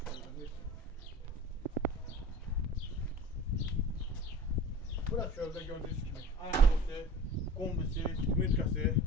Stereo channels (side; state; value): both; normal; correlation 0.40